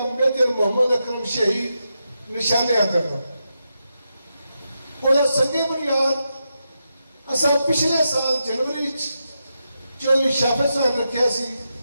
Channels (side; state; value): both; inverted; correlation -0.86